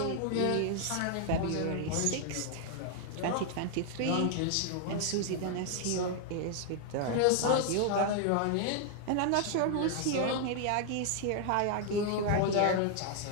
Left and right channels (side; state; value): both; different; correlation 0.00